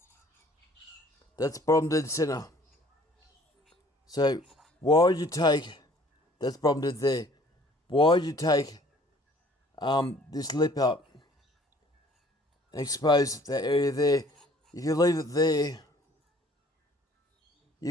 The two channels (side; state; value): both; normal; correlation 0.55